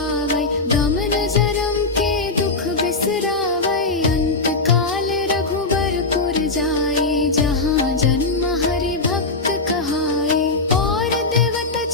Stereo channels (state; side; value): quieter; right; 3.5 dB